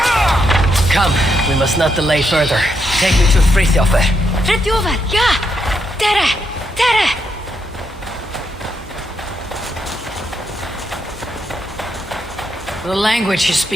Come, we must not delay further. Take me to Frithjofer. Frithjofer, ja! Tere! The language you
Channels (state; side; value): normal; both; correlation 0.80